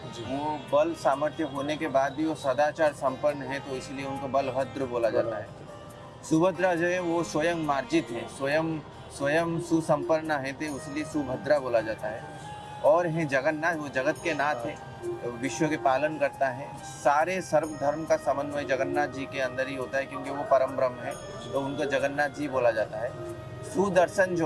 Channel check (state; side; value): identical; both; correlation 1.00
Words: वो बल सामर्थ्य होने के बाद भी वो सदाचार संपन्न है, तो इसलिए उनको बलभद्र बोला जाता है। सुभद्रा जो है वो स्वयं मार्जित है, स्वयं सुसंपन्न है, तो इसलिए सुभद्रा बोला जाता है। और है जगन्नाथ, वो जगत के नाथ है, विश्व के पालन करता है। सारे सर्व धर्म का समन्वय जगन्नाथ जी के अंदर ही होता है, क्योंकि वो परम ब्रह्म है, तो उनको जगन्नाथ जी बोला जाता है। सुदर्शन